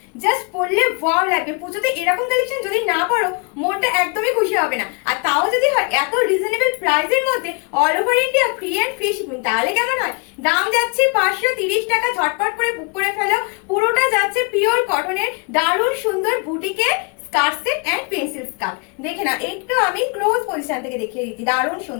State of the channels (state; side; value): quieter; right; 33.2 dB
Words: জাস্ট পরলে ওয়াও লাগবে। পুজোতে এরকম কালেকশন যদি না পরো মনটা একদমই খুশি হবে না। আর তাও যদি হয় এত রিজনেবল প্রাইসের মধ্যে, all over India free and free shipping, তাহলে কেমন হয়? দাম যাচ্ছে 530 টাকা। ঝটপট করে বুক করে ফেলো। পুরোটা যাচ্ছে পিওর কটনের দারুণ সুন্দর বুটিকের skirt set and pencil skirt. দেখে না, একটু আমি ক্লোজ পজিশন থেকে দেখিয়ে দিচ্ছি, দারুণ